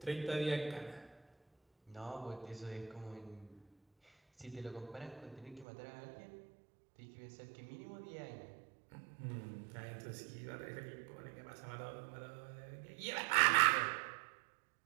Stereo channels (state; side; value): drops out; left; at 5.7 s